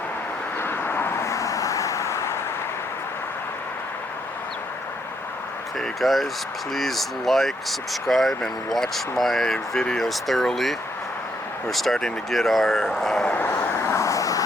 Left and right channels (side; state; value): both; normal; correlation 0.74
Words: Okay guys, please like, subscribe, and watch my videos thoroughly. We're starting to get our